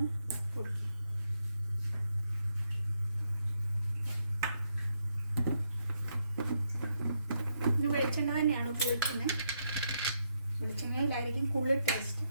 പൊടിക്കുക. ഇനി വെളിച്ചെണ്ണ തന്നെയാണ് ഉപയോഗിക്കുന്നത്. വെളിച്ചെണ്ണയിലായിരിക്കും കൂടുതൽ ടേസ്റ്റ്.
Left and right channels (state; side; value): inverted; both; correlation -0.78